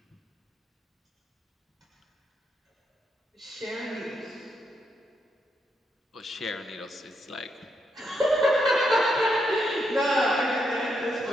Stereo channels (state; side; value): normal; both; correlation 0.80